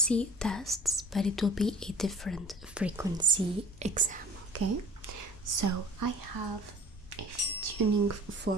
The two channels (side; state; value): both; normal; correlation 0.45